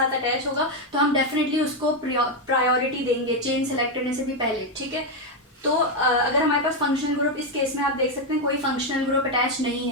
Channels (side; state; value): both; normal; correlation 0.05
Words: अटैच होगा तो हम डेफिनेटली उसको प्रायोरिटी देंगे चेन सेलेक्ट करने से भी पहले। ठीक है, तो अगर हमारे पास फंक्शनल ग्रुप, इस केस में आप देख सकते हैं कोई फंक्शनल ग्रुप अटैच नहीं